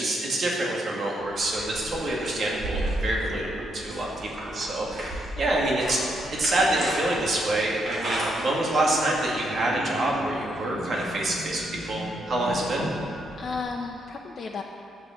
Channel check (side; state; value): both; normal; correlation 0.77